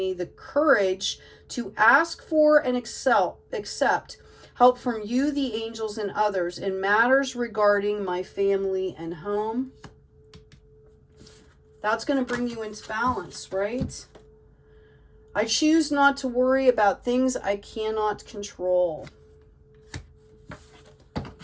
the courage to ask for and accept help from you, the angels, and others in matters regarding my family and home. That's going to bring you into balance, right? I choose not to worry about things I cannot control.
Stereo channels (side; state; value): both; identical; correlation 1.00